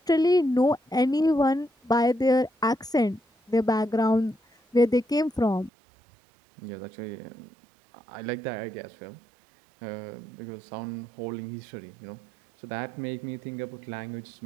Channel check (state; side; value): drops out; left; at 5.7 s